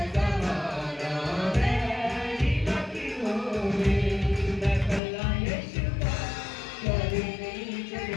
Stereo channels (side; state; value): right; drops out; at 5.0 s